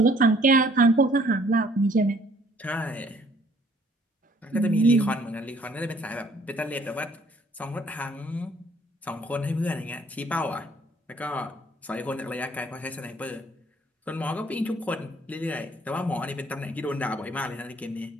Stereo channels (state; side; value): normal; both; correlation 0.60